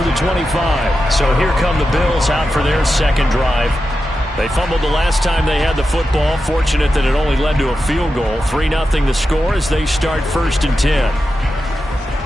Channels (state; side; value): normal; both; correlation 0.90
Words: the 25. So here come the Bills out for their second drive. They fumbled the last time they had the football. Fortunate that it only led to a field goal. 3-0 the score as they start 1st and 10.